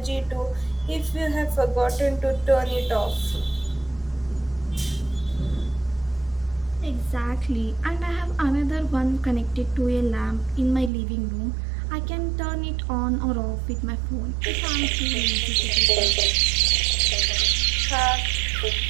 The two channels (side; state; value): left; drops out; at 10.9 s